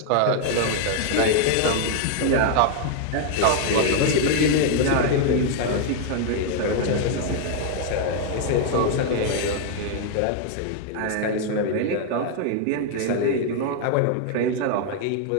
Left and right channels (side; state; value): both; different; correlation 0.00